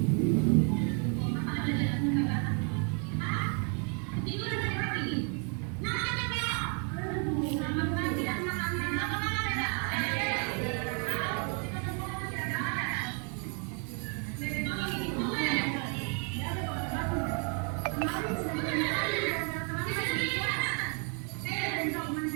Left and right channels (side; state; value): left; quieter; 38.7 dB